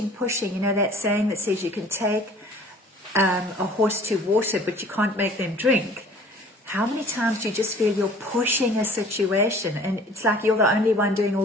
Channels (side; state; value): both; normal; correlation 0.51